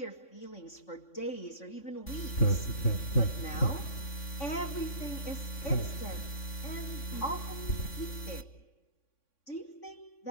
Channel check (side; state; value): right; late; 3.6 ms